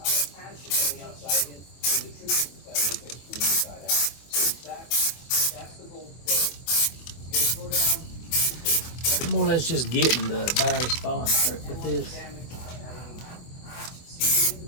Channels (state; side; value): late; right; 24 ms